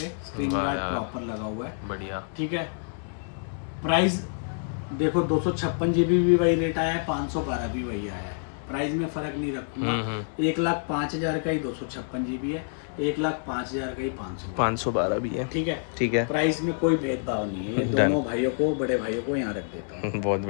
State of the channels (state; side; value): silent; right; digital silence